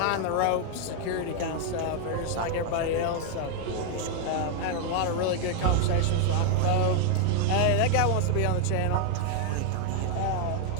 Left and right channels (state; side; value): different; both; correlation 0.00